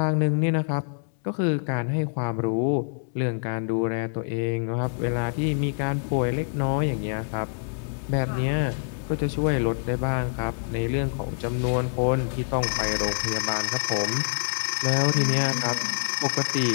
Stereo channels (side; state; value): right; silent; digital silence